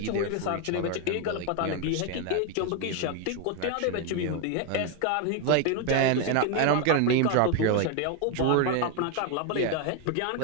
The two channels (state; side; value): different; both; correlation 0.01